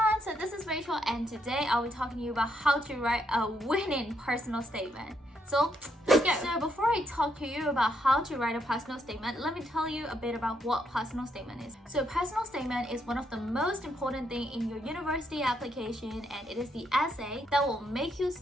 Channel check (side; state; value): both; normal; correlation 0.76